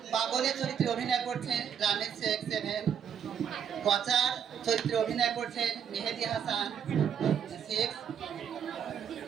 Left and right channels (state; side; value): quieter; left; 8.1 dB